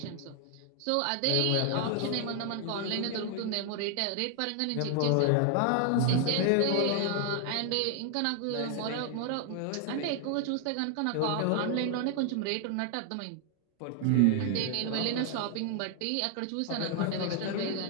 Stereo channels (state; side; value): different; both; correlation 0.00